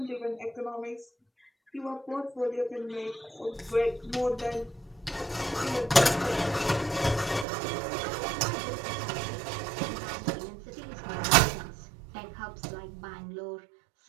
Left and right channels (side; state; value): left; drops out; at 7.5 s